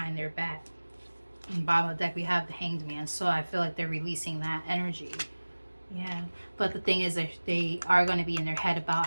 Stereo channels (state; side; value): inverted; both; correlation -1.00